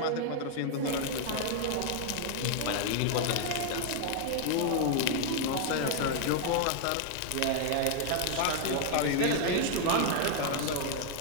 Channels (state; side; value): different; both; correlation 0.00